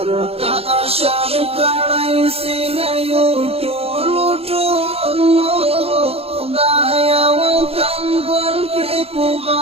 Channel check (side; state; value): left; late; 0.29 ms